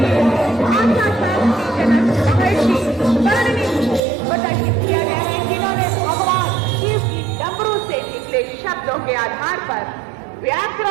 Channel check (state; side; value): drops out; left; at 4.0 s